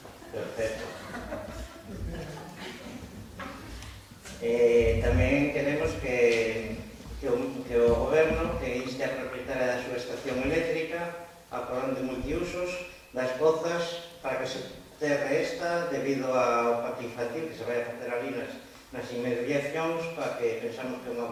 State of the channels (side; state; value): both; identical; correlation 1.00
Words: Perfecto. Tamén queremos que o Goberno que inste a propietaria da súa estación eléctrica a porón de multiusos das pozas para que se terre esta debido ao parque infantil que se vai a facer ali nas inmediacións, para que pensamos que é unha